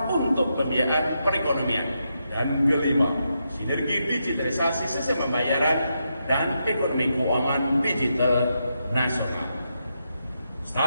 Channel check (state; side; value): inverted; both; correlation -0.83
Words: untuk pembiayaan perekonomian. Dan kelima, sinergi digitalisasi sistem pembayaran dan ekonomi keuangan digital nasional.